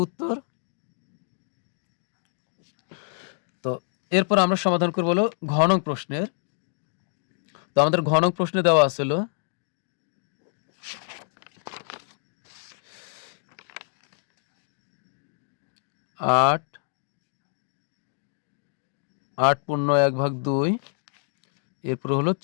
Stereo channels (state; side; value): silent; right; digital silence